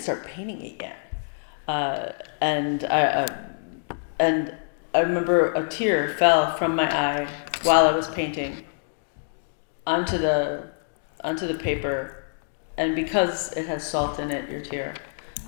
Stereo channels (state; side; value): silent; right; digital silence